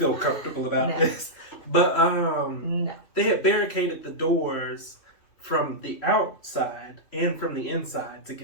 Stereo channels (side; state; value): right; late; 2.9 ms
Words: comfortable about this. But they had barricaded the doors from the outside and from the inside to